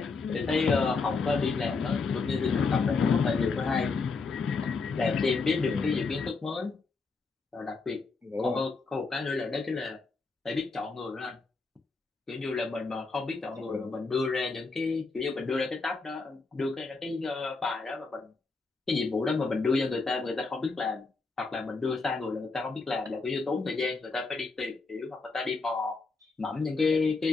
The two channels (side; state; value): right; quieter; 4.1 dB